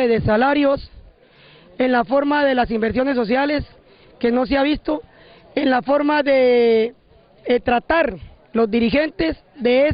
De salarios, en la forma de las inversiones sociales, que no se ha visto, en la forma de tratar los dirigentes de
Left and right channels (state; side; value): identical; both; correlation 1.00